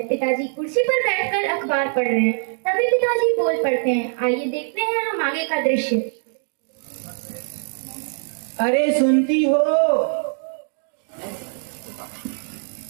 पिताजी कुर्सी पर बैठकर अखबार पढ़ रहे हैं। तभी पिताजी बोल पड़ते हैं। आइए देखते हैं हम आगे का दृश्य। अरे सुनती हो?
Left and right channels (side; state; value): left; silent; 64 dB below the other